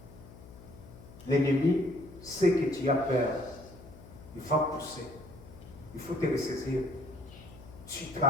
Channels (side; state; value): left; noise; hum, 18 dB below the sound